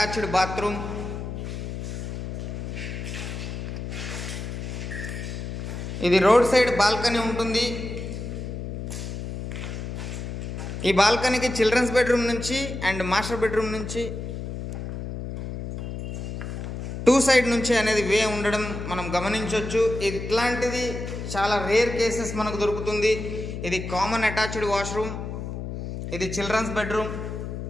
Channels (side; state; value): left; noise; hum, 6 dB below the sound